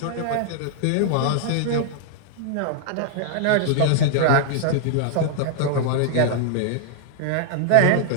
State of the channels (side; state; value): both; different; correlation -0.01